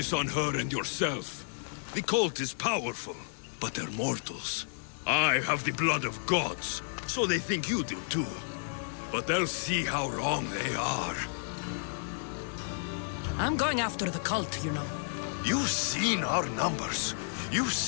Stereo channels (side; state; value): right; silent; digital silence